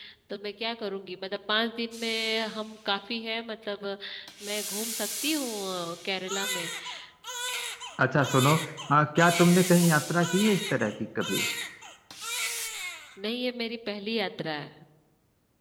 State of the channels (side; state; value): both; identical; correlation 1.00